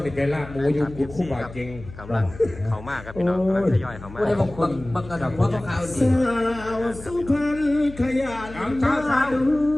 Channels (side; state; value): left; noise; hum, 16 dB below the sound